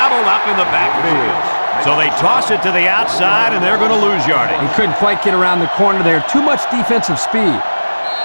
up in the backfield. So they toss it to the outside, and they're going to lose yardage. He couldn't quite get around the corner there. Too much defensive speed.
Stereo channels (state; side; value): inverted; both; correlation -1.00